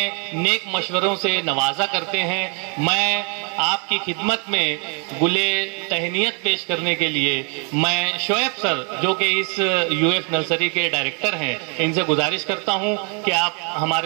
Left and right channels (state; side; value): quieter; left; 37.3 dB